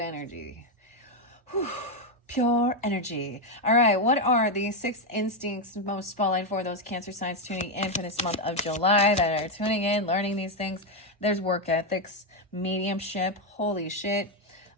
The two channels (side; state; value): both; normal; correlation 0.05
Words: Whew. Pure energy. All right, what are the 6 instincts most spotlight for those Cancer signs tuning in for this month of July that are tuning in, learning these things? There's work ethics, mediumship, holy shit,